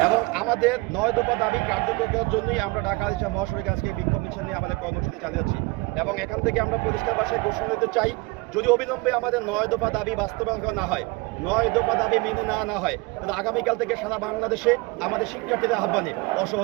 এবং আমাদের 9 দফা দাবি কার্যকর করার জন্যই আমরা ঢাকা আলিশা মহাসড়কে আজকে বিক্ষোভ মিছিল নিয়ে আমাদের কর্মসূচি চালিয়ে যাচ্ছি। এবং এখান থেকে আমরা পরিষ্কার ভাষায় ঘোষণা দিতে চাই, যদি অবিলম্বে আমাদের 9 দফা দাবি বাস্তবায়ন করা না হয়, 9 দফা দাবি মেনে না হয়, তাহলে আগামীকাল থেকে সারা বাংলাদেশে আমাদের শিক্ষার্থীদের আহ্বানে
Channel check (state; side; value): quieter; left; 25.3 dB